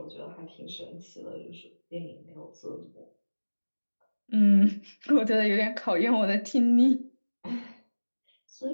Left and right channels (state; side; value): inverted; both; correlation -1.00